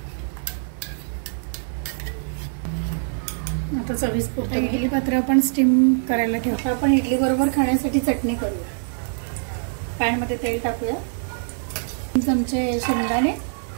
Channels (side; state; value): left; silent; 63 dB below the other